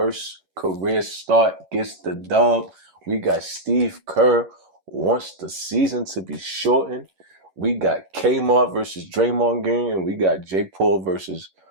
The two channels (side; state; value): left; late; 11 ms